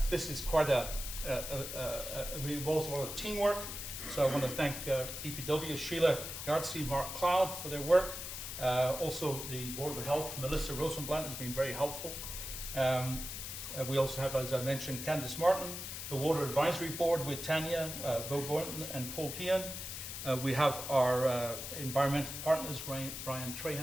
this is quite it involves a lot of teamwork. So I want to thank DPW, Sheila Gartsey, Mark Cloud for their work. Also the Board of Health, Melissa Rosenblatt has been very helpful. We also have, as I mentioned, Candice Martin, the Water Advisory Board with Tanya, Bo Boynton, and Paul Kean. We have our environmental partners, Brian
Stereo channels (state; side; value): noise; left; hiss, 7 dB below the sound